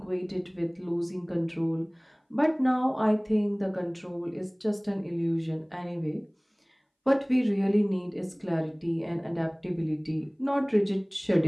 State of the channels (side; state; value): both; identical; correlation 1.00